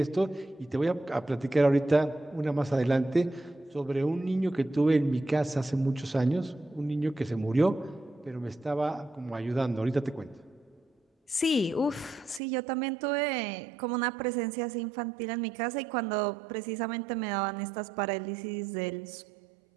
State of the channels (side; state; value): left; drops out; at 12.4 s